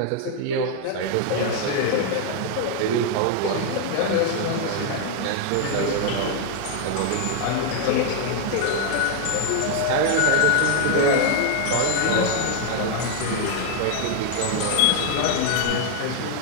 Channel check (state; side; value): different; both; correlation 0.00